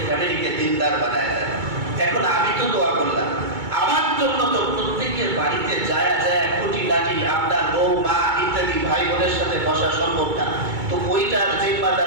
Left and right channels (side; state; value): left; late; 2.2 ms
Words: ফ্যামিলিকে দিনদার বানায় দেয়। এখন আমি তো দোয়া করলাম, আমার জন্য তো প্রত্যেকের বাড়িতে যায় খুঁটিনাটি আপনার বউ, মা ইত্যাদি ভাই বোনের সাথে বসা সম্ভব না, তো ওইটার